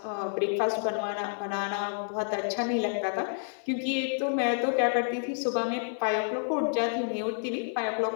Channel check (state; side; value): silent; right; 58 dB below the other